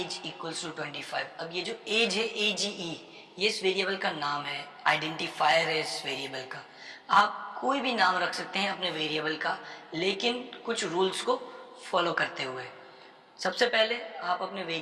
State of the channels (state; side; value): identical; both; correlation 1.00